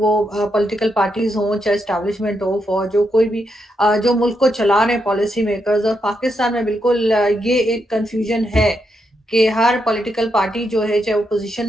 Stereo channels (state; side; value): normal; both; correlation 0.81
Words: पॉलिटिकल पार्टीज़ हों, चाहे एस्टेब्लिशमेंट हो, फौज हो, कोई भी जो मुल्क को चला रहे हैं पॉलिसी मेकर्स। और पाकिस्तान में बिल्कुल ये एक कन्फ्यूजन है कि हर पॉलिटिकल पार्टी जो है, चाहे ओपोज़िशन